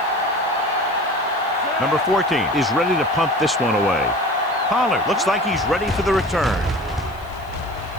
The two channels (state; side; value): noise; left; hiss, 27 dB below the sound